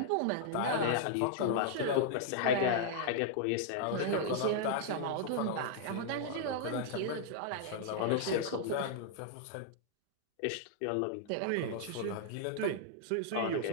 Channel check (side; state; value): both; different; correlation -0.01